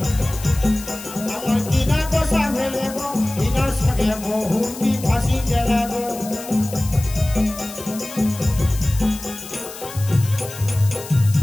আমার কিনা দশা ভেলে গো, ইনার সঙ্গে বহুটি ফাঁসি গেলা গো।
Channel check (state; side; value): noise; left; hiss, 13 dB below the sound